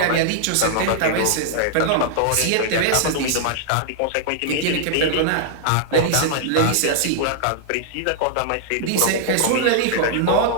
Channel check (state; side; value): different; both; correlation -0.01